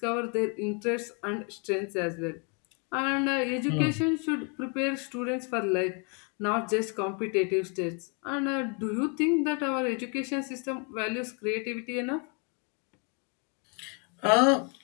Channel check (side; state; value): right; quieter; 36.2 dB